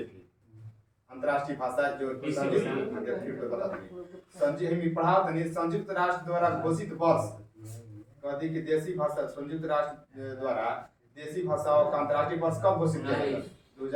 भी अंतर्राष्ट्रीय भाषा जो संयुक्त पढ़ा संयुक्त राष्ट्र द्वारा घोषित वर्ष कहती कि देसी भाषा संयुक्त राष्ट्र द्वारा देसी भाषाओं का अंतर्राष्ट्रीय वर्ष कब घोषित किया गया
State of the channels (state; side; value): identical; both; correlation 1.00